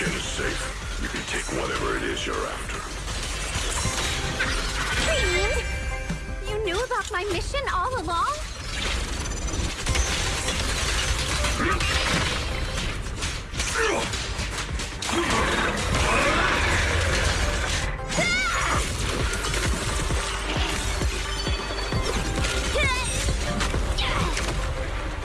is safe, you can take whatever it is you're after. Fiend! You knew about my mission all along?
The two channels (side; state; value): both; identical; correlation 1.00